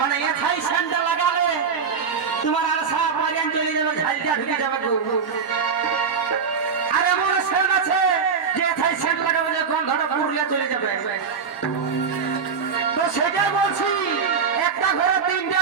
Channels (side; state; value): left; quieter; 6.0 dB